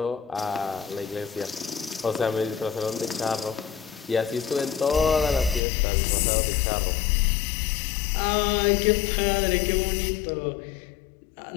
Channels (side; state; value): right; drops out; at 5.6 s